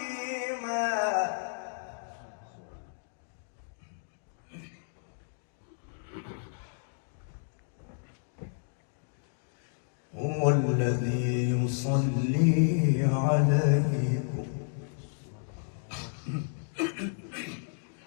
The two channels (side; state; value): right; silent; digital silence